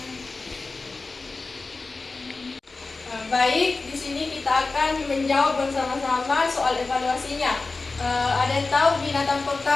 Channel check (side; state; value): right; quieter; 3.7 dB